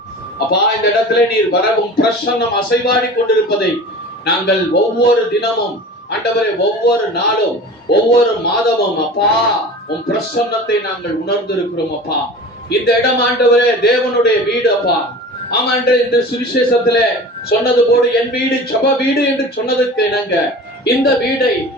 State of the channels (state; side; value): normal; both; correlation 0.37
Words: அப்பா, இந்த இடத்துல நீர் வரவும் பிரசன்னம் அசைவாடி கொண்டிருப்பதை நாங்கள் ஒவ்வொரு தினமும் ஆண்டவரே, ஒவ்வொரு நாளும் ஒவ்வொரு மாதமும் அப்பா உன் பிரசன்னத்தை நாங்கள் உணர்ந்திருக்கிறோம் அப்பா. இந்த இடம் ஆண்டவரே தேவனுடைய வீடு அப்பா. ஆமாண்டு இந்த சுவிசேஷத்திலே சொன்னது போடு, என் வீடு ஜெப வீடு என்று சொன்னதுக்கு இணங்க இந்த வீடை